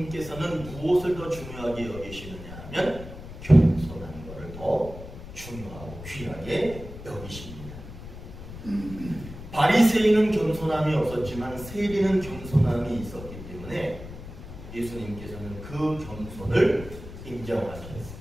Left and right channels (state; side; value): noise; left; rumble, 13 dB below the sound